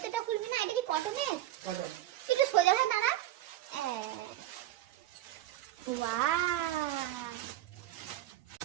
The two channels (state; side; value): quieter; left; 14.1 dB